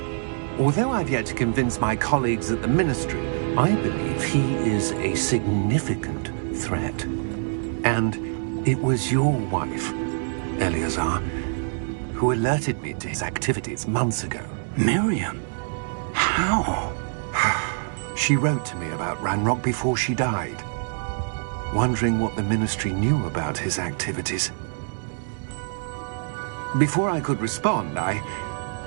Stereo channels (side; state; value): left; silent; digital silence